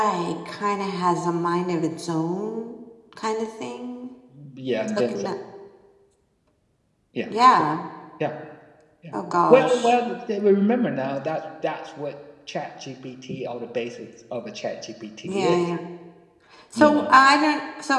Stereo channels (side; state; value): both; identical; correlation 1.00